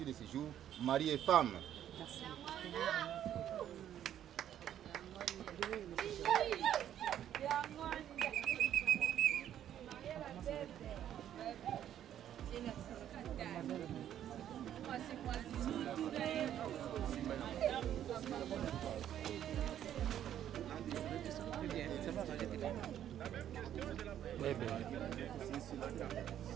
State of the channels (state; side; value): quieter; left; 10.7 dB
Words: de ce jour, mari et femme. Merci. Bébé.